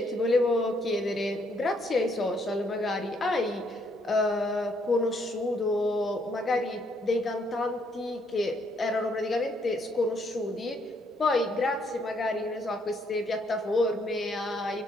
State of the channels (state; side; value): normal; both; correlation 0.71